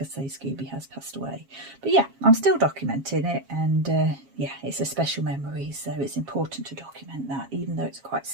say, Scooby has passed away. But yeah, I'm still documenting it, and yeah, it's a special memory, so it's important to document that, even though it's quite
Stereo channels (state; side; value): late; left; 7.4 ms